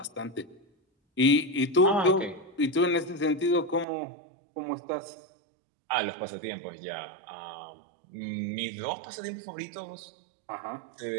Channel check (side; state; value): left; drops out; at 3.9 s